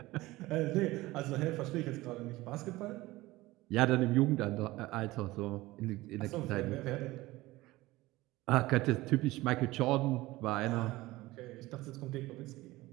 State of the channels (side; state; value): left; quieter; 18.9 dB